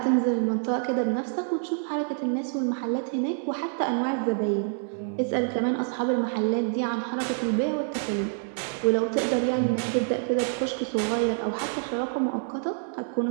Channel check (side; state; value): left; silent; 60 dB below the other